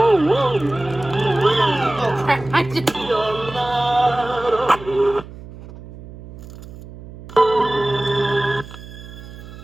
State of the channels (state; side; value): noise; right; hum, 15 dB below the sound